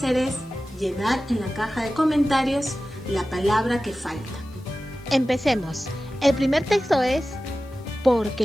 es llenar en la caja de comentarios la palabra que falta. Empecemos. El primer texto es:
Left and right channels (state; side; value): noise; left; hiss, 29 dB below the sound